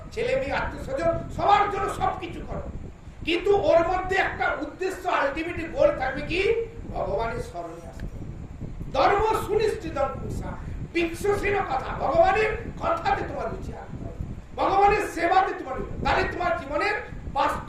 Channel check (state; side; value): identical; both; correlation 1.00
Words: ছেলে মেয়ে, আত্মীয় স্বজন, সবার জন্য সবকিছু করো, কিন্তু ওর মধ্যে একটা উদ্দেশ্য, আলটিমেট গোল থাকবে কি? ভগবানের স্মরণে আসতে। ধর্ম সুনিশ্চিত পুংসাং বিক্ষসেন কথা, ভগবানের কথাতে তোমার রুচি আসতে হবে, ভগবানের সেবাতে তোমার, তাহলে তোমার জীবনের